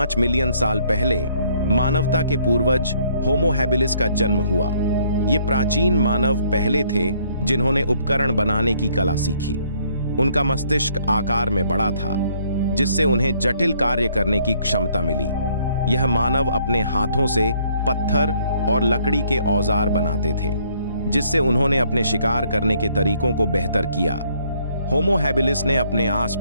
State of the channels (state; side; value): inverted; both; correlation -0.66